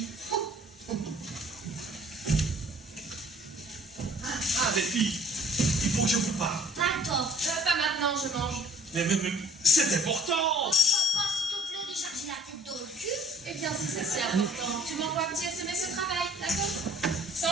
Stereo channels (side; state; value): both; normal; correlation 0.55